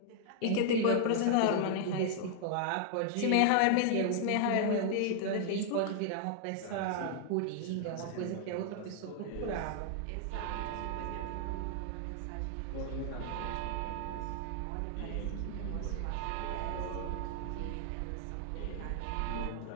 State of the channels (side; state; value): both; different; correlation 0.00